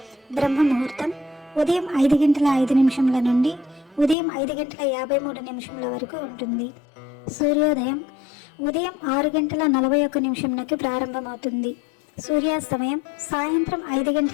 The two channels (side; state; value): right; drops out; at 4.2 s